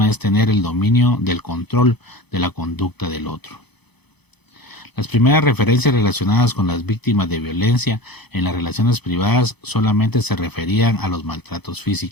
es tener el dominio del control de la conducta del otro. Las primeras referencias relacionadas con las víctimas de violencia en las relaciones privadas solamente se referían a los maltratos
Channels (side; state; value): right; late; 0.98 ms